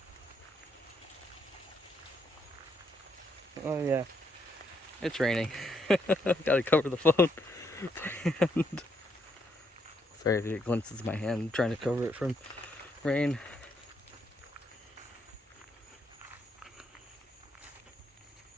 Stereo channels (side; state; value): both; normal; correlation 0.76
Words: Oh yeah, it's raining. Gotta cover the phone. And sorry if you get glimpses of my hand. I'm trying to cover it from rain.